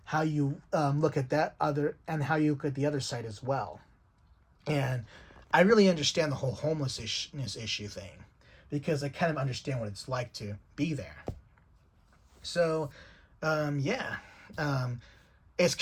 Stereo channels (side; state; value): both; identical; correlation 1.00